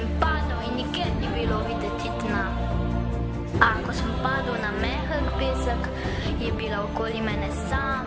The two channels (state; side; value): identical; both; correlation 1.00